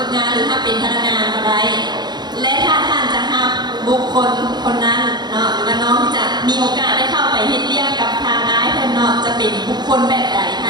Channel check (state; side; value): late; left; 0.21 ms